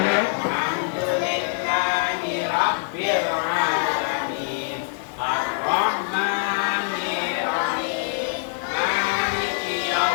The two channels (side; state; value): right; silent; 56 dB below the other